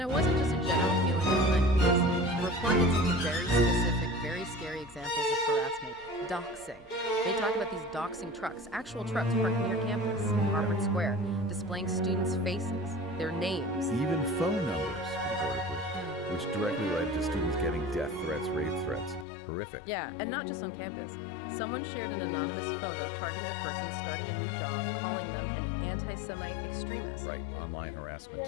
it wasn't just a general feeling of unease. The report gets into very specific, very scary examples of harassment. Doxing. They talk about these doxing trucks, actual trucks parked near campus, in Harvard Square, displaying students' faces, their names. Even phone numbers, reportedly, which directly led to students getting death threats, rape threats. Horrific. Yeah, and not just on campus. Someone shared an anonymous photo targeting a person starting a new job, calling them an anti-Semite extremist. Right, online harassment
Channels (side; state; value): right; drops out; at 19.2 s